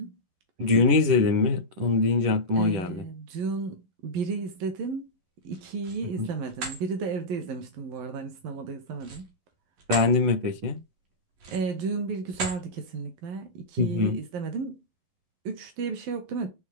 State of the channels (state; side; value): late; left; 11 ms